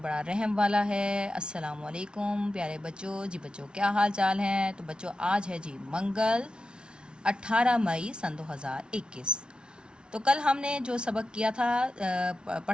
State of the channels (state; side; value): late; left; 0.055 ms